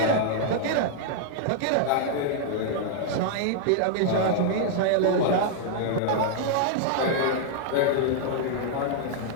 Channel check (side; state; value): both; different; correlation -0.01